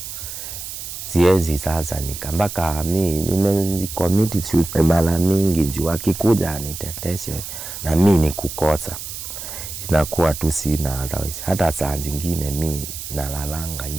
siwezi sasa nikambaka mimi nimecommit suicide mara mingi juu akikuja aniteteshe na mimi nikukosa inakuwa tu sina otherwise. Hata saa zingine mimi nalalanga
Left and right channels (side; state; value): right; noise; hiss, 9 dB below the sound